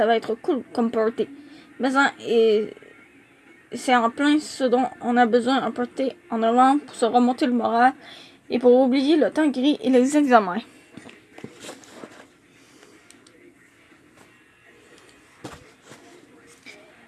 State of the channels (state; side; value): identical; both; correlation 1.00